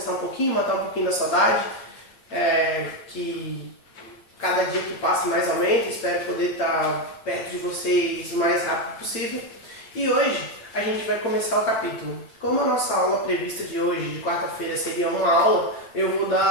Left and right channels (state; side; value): late; right; 8.8 ms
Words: um pouquinho, matar um pouquinho da saudade, que cada dia que passa mais aumenta, espero poder estar perto de vocês o mais rápido possível. E hoje a gente vai começar o capítulo. Como a nossa aula prevista de hoje, de quarta-feira, seria uma aula, eu vou